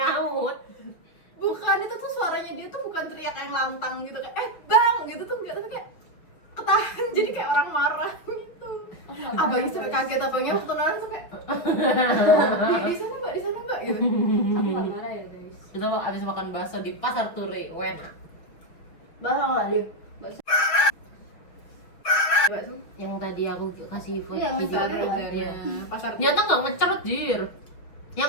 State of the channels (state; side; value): late; right; 6.2 ms